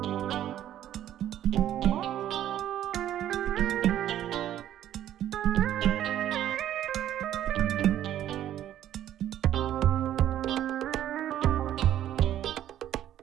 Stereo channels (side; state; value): left; quieter; 11.7 dB